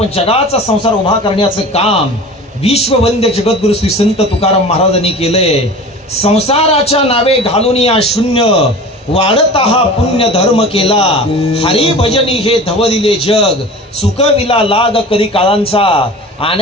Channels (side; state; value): both; normal; correlation 0.37